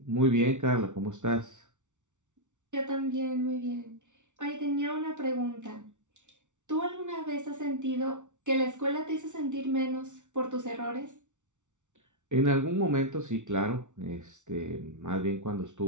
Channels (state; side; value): late; left; 0.86 ms